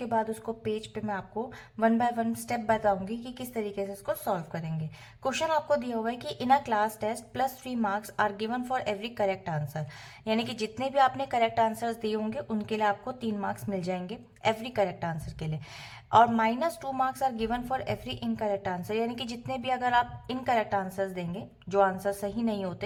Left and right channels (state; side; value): identical; both; correlation 1.00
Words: बाद उसको पेज पे मैं आपको वन बाय वन स्टेप बताऊंगी कि किस तरीके से इसको सॉल्व करेंगे। क्वेश्चन आपको दिया हुआ है कि in a class test +3 marks are given for every correct answer, यानी कि जितने भी आपने करेक्ट आंसर्स दिए होंगे उनके लिए आपको 3 मार्क्स मिल जाएंगे एवरी करेक्ट आंसर के लिए। और -2 marks are given for every incorrect answer, यानी कि जितने भी अगर आप इनकरेक्ट आंसर्स देंगे, जो आंसर सही नहीं